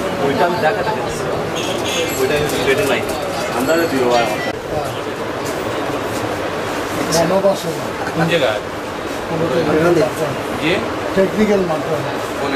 ওইটা আমি দেখা থাকে ওইটা সিলেটে নাই আমরা দিও গণবাসনা কোন জায়গায় যে টেকনিক্যাল মাধ্যমে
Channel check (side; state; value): both; identical; correlation 1.00